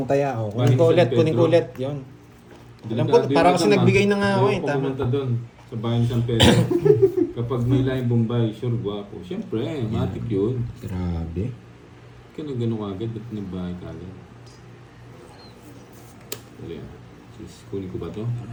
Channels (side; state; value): both; identical; correlation 1.00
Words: taya. O, kunin ko Bahay ni ulit, San kunin ko Pedro. ulit. Yun. Alam ko, Delikado parang yun kasi naman. nagbigay na nga ako eh. Ayoko Tama. pumunta doon sa bahay ni San Pedro. Kapag may laing Bombay, sure guwapo. Siyempre, matik yun. Grabe. Kaya na gano'n agad, ba't may bahay ka agad? Wala yan. Sis, kunin ko ba to?